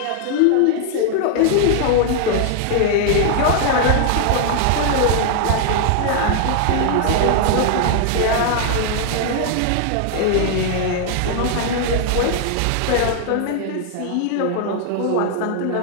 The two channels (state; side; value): different; both; correlation 0.00